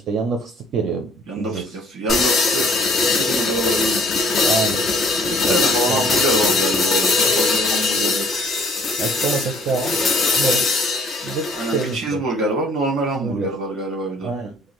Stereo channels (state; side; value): normal; both; correlation 0.58